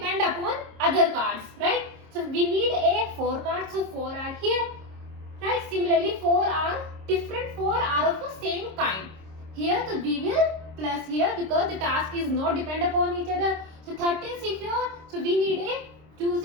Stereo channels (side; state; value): left; late; 26 ms